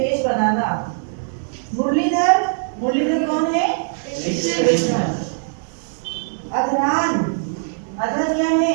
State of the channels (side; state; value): left; silent; 65 dB below the other